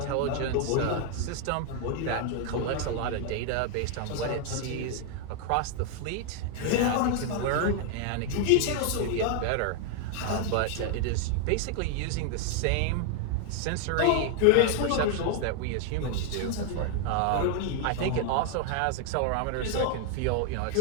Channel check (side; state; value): both; different; correlation 0.00